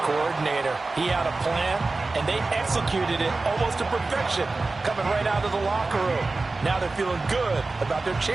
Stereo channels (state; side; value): quieter; left; 3.5 dB